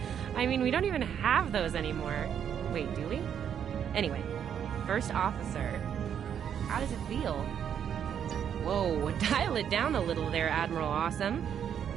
I mean, we don't even have those anymore. Wait, do we? Anyway, First Officer. How does it feel? Whoa, dial it down a little there, Admiral Awesome.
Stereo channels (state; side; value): quieter; left; 8.6 dB